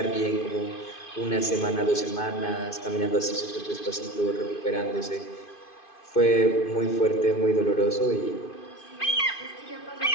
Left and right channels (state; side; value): late; right; 2.5 ms